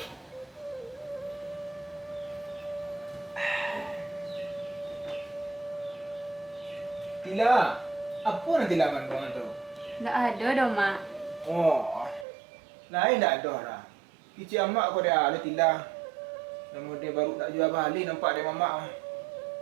Tila, apa nanti laman kau tu? Tak ada dah, Mak. Oh, lain tak ada dah. Kicik amak kau dia ada Tila. Namun dia baru nak jual balik nampak dia mamak.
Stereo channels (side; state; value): left; drops out; at 12.2 s